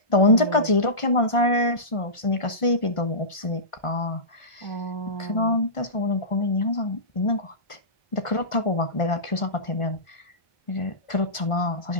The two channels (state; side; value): late; right; 1.5 ms